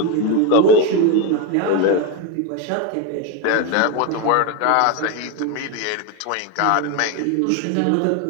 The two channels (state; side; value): different; both; correlation 0.02